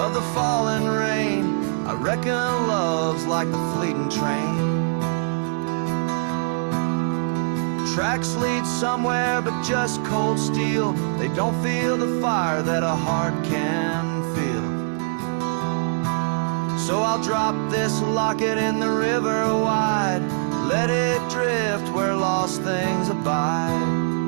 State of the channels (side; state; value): left; silent; 63 dB below the other